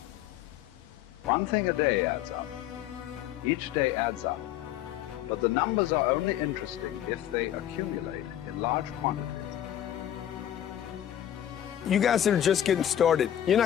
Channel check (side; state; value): right; quieter; 11.3 dB